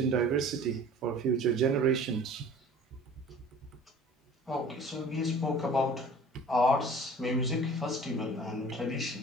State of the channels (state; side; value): normal; both; correlation 0.45